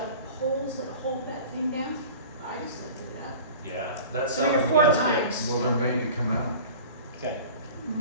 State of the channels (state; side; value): inverted; both; correlation -0.40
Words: poles that hold that thing down, I just lifted it up. Yeah, that's 3 or something we 4 gotta times. fix. Well, they're made to come out. Okay.